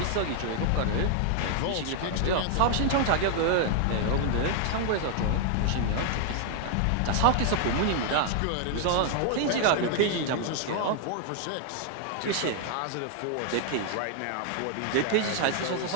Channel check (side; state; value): both; different; correlation 0.00